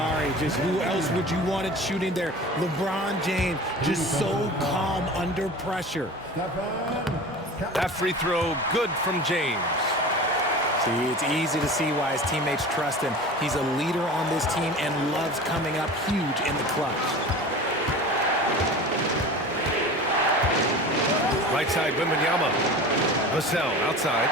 just who else would you want it shooting there? LeBron James, just so calm under pressure. That free throw good from James. See, it's easy to see why his teammates trust him. He's a leader on this team and loves coming up huge in the clutch. Right side, Wembanyama. Vassell outside.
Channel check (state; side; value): normal; both; correlation 0.36